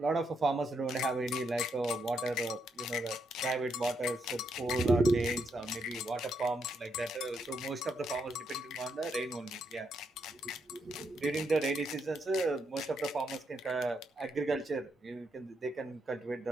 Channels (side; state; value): both; normal; correlation 0.79